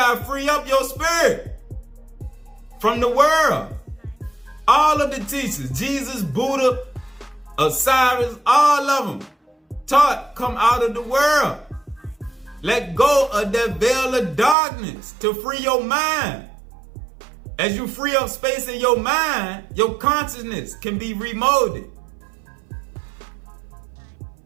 to free up your spirit from the world. All of the teachers, Jesus, Buddha, Osiris, all of them taught come out of the world. Let go of that veil of darkness to free your mind. As you free up space in your mind, your consciousness can be remolded.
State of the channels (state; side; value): drops out; left; at 14.6 s